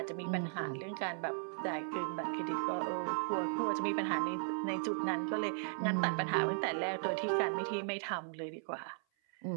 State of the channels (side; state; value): left; silent; 53 dB below the other